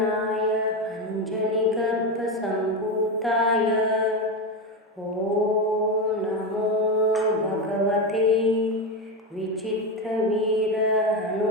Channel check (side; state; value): both; normal; correlation 0.14